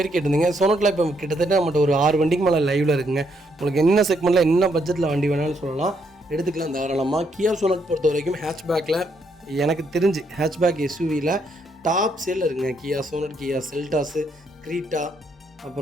கேட்டிருந்தீங்க. சோனட்டில் இப்போ கிட்டத்தட்ட நம்மகிட்ட ஒரு 6 வண்டிக்கு மேலே லைவில் இருக்குங்க. உங்களுக்கு என்ன செக்மெண்ட்டில் என்ன பட்ஜெட்டில் வண்டி வேணாலும் சொல்லலாம், எடுத்துக்கலாம் தாராளமாக. கியா சோனட் பொறுத்த வரைக்கும் ஹேட்ச்பேக்கில் எனக்கு தெரிஞ்சு ஹேட்ச்பேக் SUVயில் டாப் சேலில் இருக்குங்க. கியா சோனட், கியா செல்டாஸு, கிரீட்டா,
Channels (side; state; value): both; normal; correlation 0.74